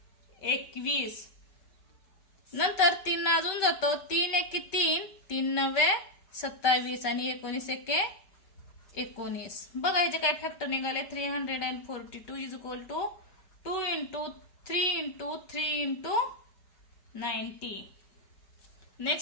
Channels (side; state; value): right; late; 5.2 ms